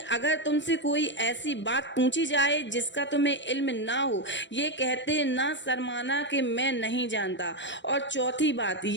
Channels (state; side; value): late; right; 0.53 ms